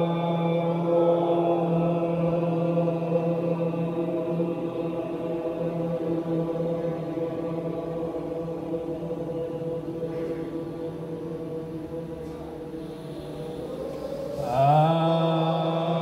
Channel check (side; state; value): both; identical; correlation 1.00